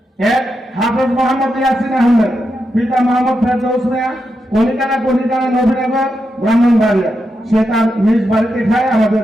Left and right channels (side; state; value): both; normal; correlation 0.86